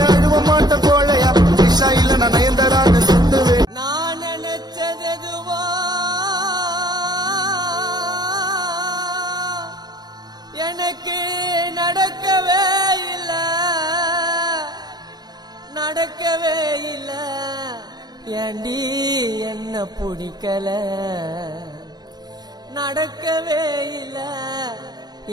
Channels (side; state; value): left; late; 0.19 ms